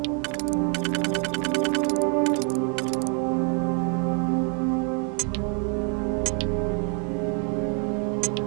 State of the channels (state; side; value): quieter; left; 39.2 dB